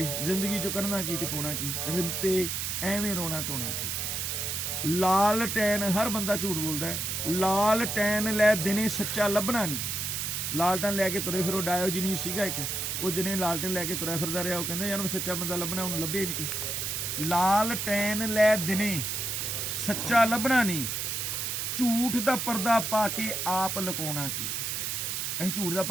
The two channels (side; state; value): right; noise; hiss, 2 dB below the sound